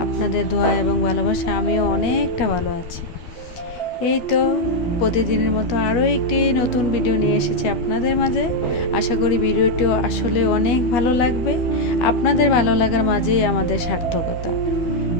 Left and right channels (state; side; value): late; right; 12 ms